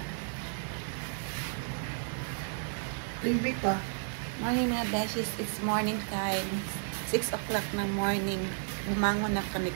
Baby pa. Morning mga beshies. It's morning time. 6 o'clock ng morning. Bumangon na kami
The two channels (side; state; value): left; silent; digital silence